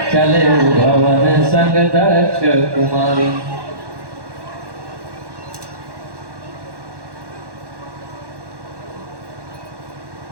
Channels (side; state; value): left; late; 1.1 ms